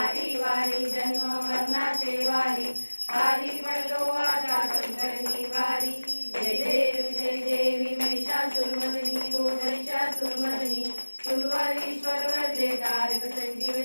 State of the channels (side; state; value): both; inverted; correlation -1.00